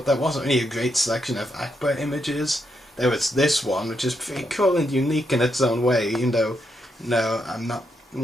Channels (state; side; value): normal; both; correlation 0.80